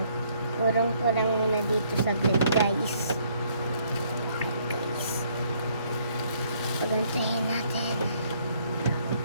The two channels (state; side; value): inverted; both; correlation -0.66